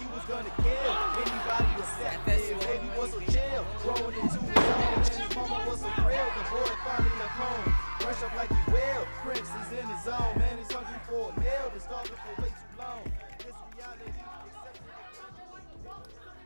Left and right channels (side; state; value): both; inverted; correlation -1.00